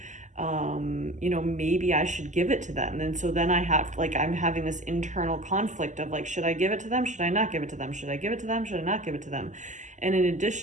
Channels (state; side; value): late; left; 0.35 ms